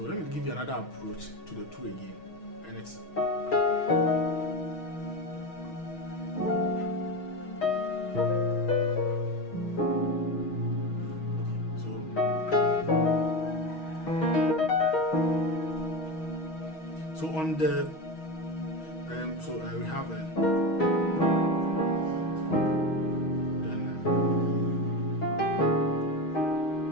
let me give you another approach to the 2 again, and it's so on the we have then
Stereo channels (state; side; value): late; right; 6.3 ms